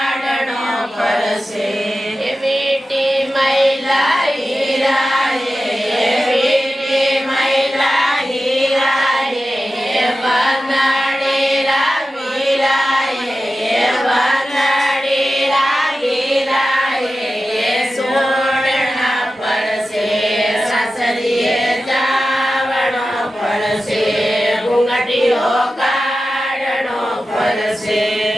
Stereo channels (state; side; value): normal; both; correlation 0.93